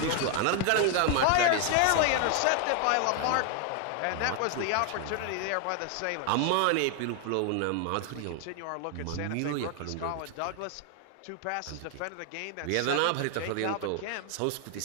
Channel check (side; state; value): both; different; correlation 0.00